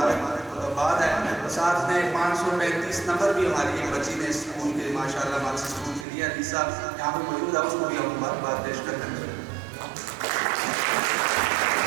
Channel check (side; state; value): left; drops out; at 6.1 s